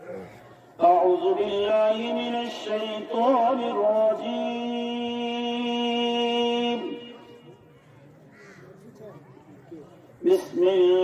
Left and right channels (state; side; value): identical; both; correlation 1.00